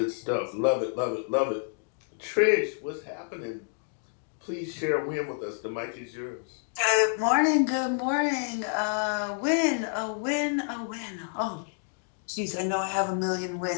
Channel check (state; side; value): silent; right; 57 dB below the other